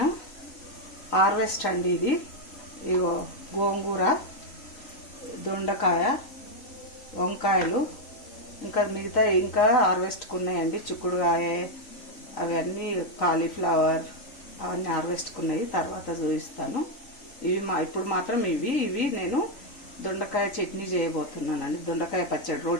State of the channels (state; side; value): late; right; 3.9 ms